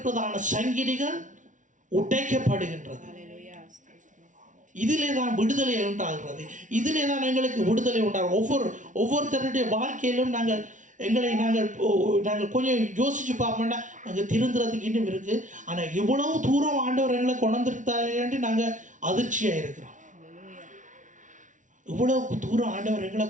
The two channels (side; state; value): left; late; 0.37 ms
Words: சங்கிலிகள் உடைக்கப்படுகின்றது. இதிலே தான் விடுதலை உண்டாகிறது. இதிலே தான் எங்களுக்கு விடுதலை உண்டாகும். ஒவ்வொருத்தருடைய வாழ்க்கையிலும் நாங்கள் கொஞ்சம் யோசிச்சு பார்ப்போம்னா நாங்கள் திருந்துறதுக்கு இன்னும் இருக்குது. ஆனால் இவ்வளவு தூரம் ஆண்டவர் எங்களை கொண்டிருத்தாரு நாங்கள் அதிர்ச்சியாக இருக்கிறோம். இவ்வளவு தூரம் ஆண்டவர் எங்களை